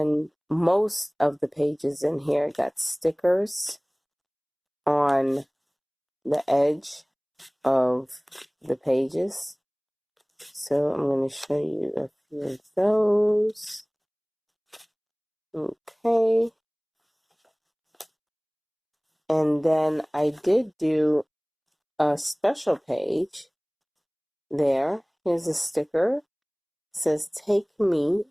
most of the pages in here got stickers on the edge of the pages. So I'm going to show you a few of those. Okay. And then I did do a special page there. Here's a sticker. It says take me,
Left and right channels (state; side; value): identical; both; correlation 1.00